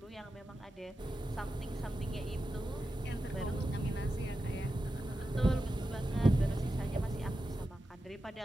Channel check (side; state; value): both; normal; correlation 0.91